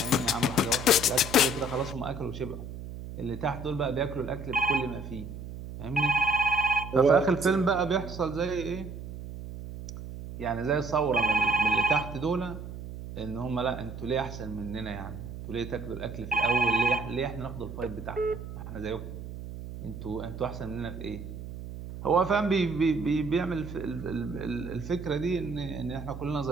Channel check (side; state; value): right; noise; hum, 10 dB below the sound